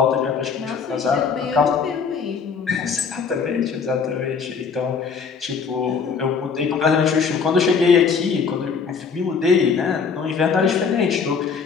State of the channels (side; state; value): right; quieter; 5.7 dB